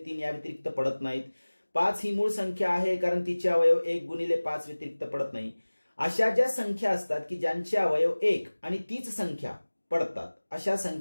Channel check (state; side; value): inverted; both; correlation -1.00